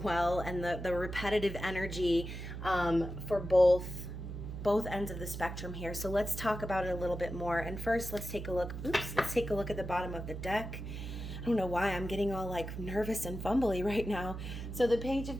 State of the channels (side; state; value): right; noise; hum, 7 dB below the sound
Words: and the repetitive energy for both ends of the spectrum here. So let's talk about it a little bit more. And first, let's take a look. Let's take a look at the bottom of the deck. I don't know why I'm getting all like nervous and fumbly right now. So the Page